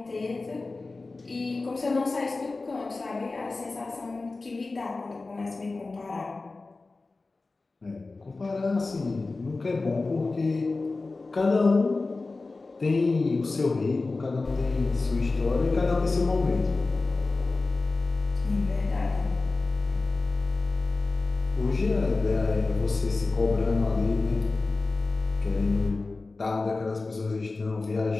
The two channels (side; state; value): right; quieter; 3.6 dB